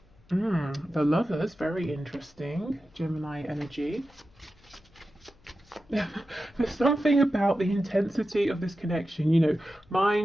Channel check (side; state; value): left; noise; hum, 29 dB below the sound